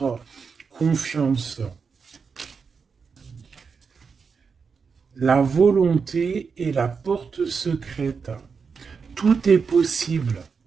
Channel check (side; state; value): left; quieter; 5.5 dB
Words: confiance. La volonté est la porte secrète. Tout est possible.